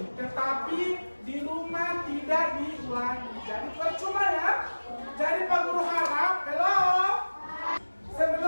tetapi di rumah tidak diulangi. Jadi percuma ya. Jadi Pak Guru harap,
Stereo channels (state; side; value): inverted; both; correlation -1.00